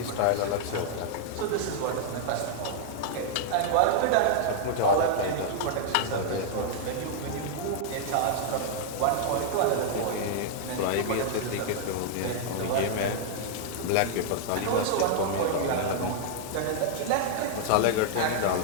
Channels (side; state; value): both; different; correlation -0.01